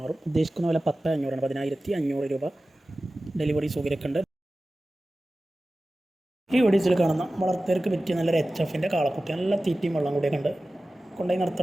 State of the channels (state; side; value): normal; both; correlation 0.96